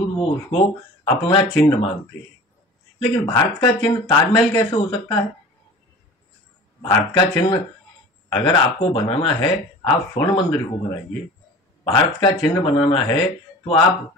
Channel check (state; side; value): normal; both; correlation 0.40